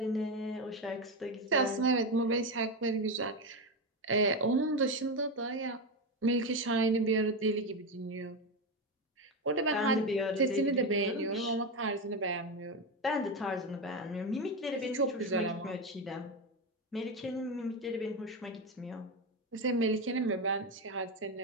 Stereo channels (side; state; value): both; normal; correlation 0.13